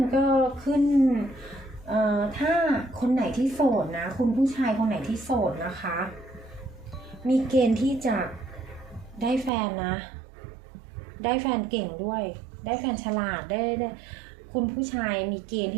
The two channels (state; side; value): drops out; left; at 9.5 s